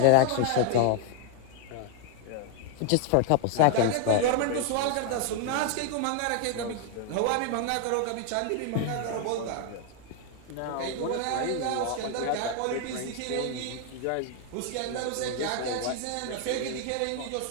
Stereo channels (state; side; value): different; both; correlation 0.00